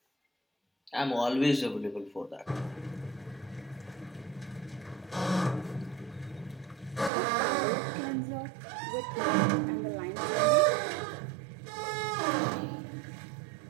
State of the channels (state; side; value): drops out; left; at 7.1 s